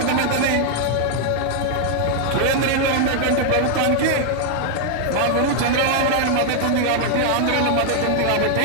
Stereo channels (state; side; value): different; both; correlation 0.00